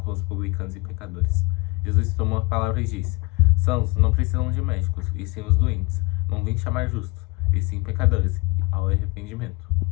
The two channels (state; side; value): quieter; right; 23.9 dB